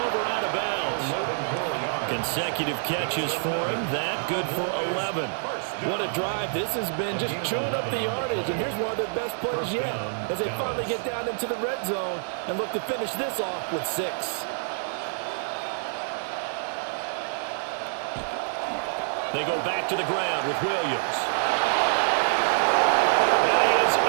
out of bounds. Consecutive catches for him. That good for 11. What a drive this has been, just chewing up the yardage. And here's one of their best plays yet as they finally get down into the red zone and look to finish this off with 6. They go back to the ground with Williams. And he is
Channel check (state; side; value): silent; left; 60 dB below the other